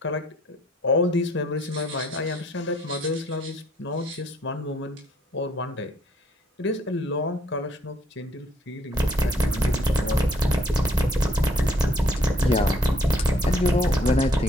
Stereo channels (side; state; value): both; normal; correlation 0.65